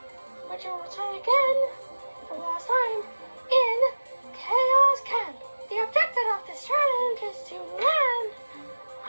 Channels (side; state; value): both; inverted; correlation -1.00